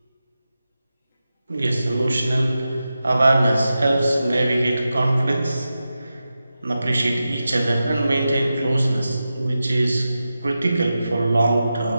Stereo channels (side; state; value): both; inverted; correlation -0.92